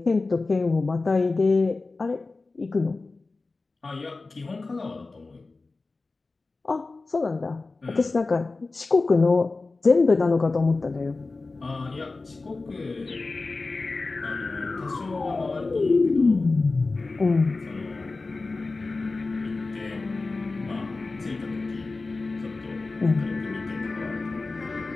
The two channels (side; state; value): right; quieter; 3.6 dB